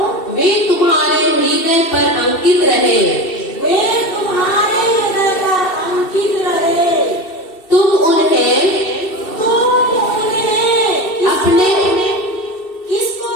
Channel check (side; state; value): right; late; 2.7 ms